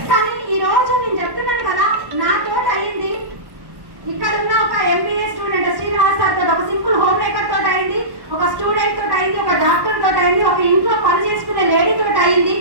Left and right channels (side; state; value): left; late; 1.1 ms